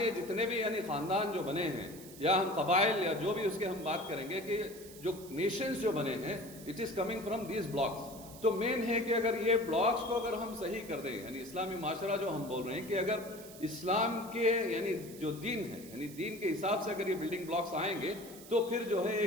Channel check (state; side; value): noise; right; hiss, 17 dB below the sound